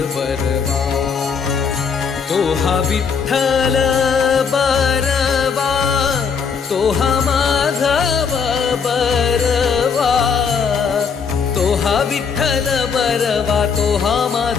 बरबा तो हा विठ्ठल बरबा तो हा माधव बरबा तो हा विठ्ठल बरबा तो हा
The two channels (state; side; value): quieter; right; 6.2 dB